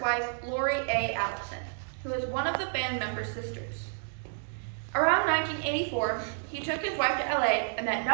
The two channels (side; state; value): left; silent; digital silence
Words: wife, Lori A. Allison, who was one of the band members' sisters. Around 1984, he took his wife to LA and met